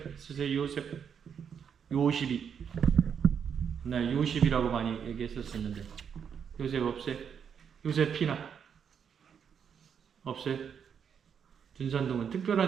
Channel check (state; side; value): quieter; left; 7.4 dB